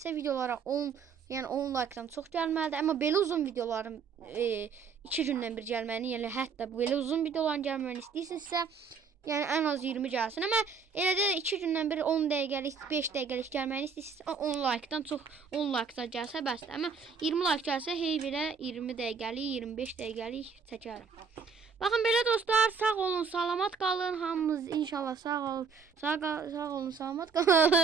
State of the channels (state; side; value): quieter; left; 5.6 dB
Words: videolara 10 like-dan çox gəlməlidir. Amma belə uzun videoların 2 gündən bir gəlməyini, yəni hətta belə uzun videoların gəlməyini istəyirsinizsə, yəni ən az 20 gəlsin. Amma elə də 2 gündən bir 10 dəqiqəlik, 5 dəqiqəlik gəlməyini istəyirsinizsə 10 like-dan çox 10 like-da gəlsə bəsdir. Amma 20 like gəlsə hey belə 20 dəqiqəlik, 25 dəqiqəlik çəkərəm. Baxın belə dostlar, sağ olun, salamat qalın. Hamımız inşallah sağ olun, salamat